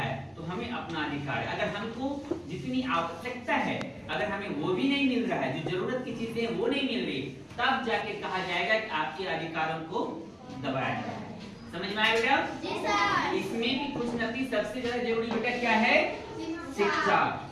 तो हमें अपना अधिकार है। अगर हमको जितनी आवश्यकता है अगर हमें वो भी नहीं मिल रहा है, जो जरूरत की चीजें वो नहीं मिल रही, तब जाके कहा जाएगा कि आपके अधिकारों को दबाया जाए। समझ में आया बेटा? जी सर। इसमें भी कुछ न कुछ सबसे ज्यादा जरूरी बेटा क्या है? शिक्षा।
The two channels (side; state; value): both; identical; correlation 1.00